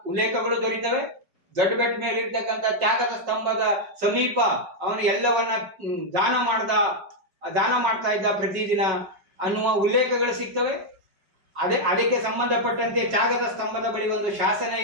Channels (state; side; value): late; left; 5.4 ms